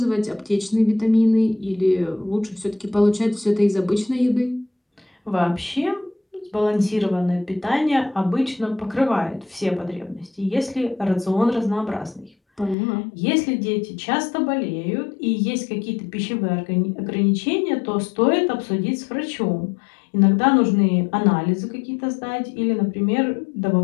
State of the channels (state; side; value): drops out; right; at 12.8 s